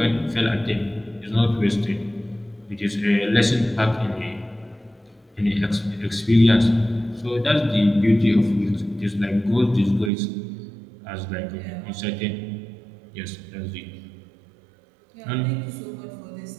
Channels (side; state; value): left; drops out; at 10.1 s